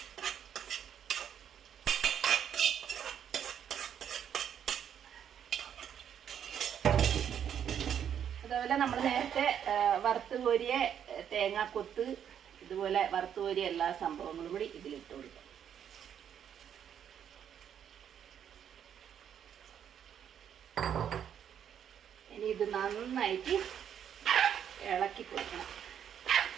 അതുപോലെ നമ്മൾ നേരത്തെ വറുത്ത് കോരിയ തേങ്ങാക്കൊത്ത്, ഇതുപോലെ വറുത്ത് കോരിയ എല്ലാ സംഭവങ്ങളും കൂടി ഇതിലിട്ട് കൊടുക്കാം. ഇനി ഇത് നന്നായിട്ട് ഇളക്കി കൊടുക്കണം.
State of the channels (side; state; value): left; quieter; 8.9 dB